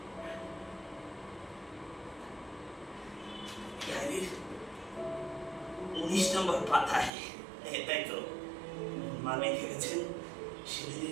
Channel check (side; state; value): left; drops out; at 7.1 s